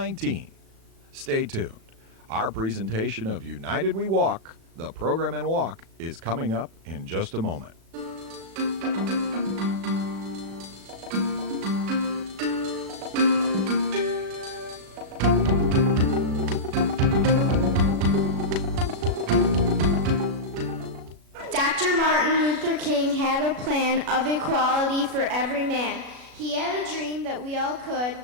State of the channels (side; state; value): left; late; 36 ms